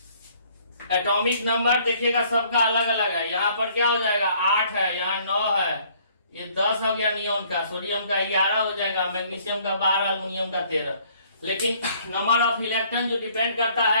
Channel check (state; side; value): inverted; both; correlation -0.61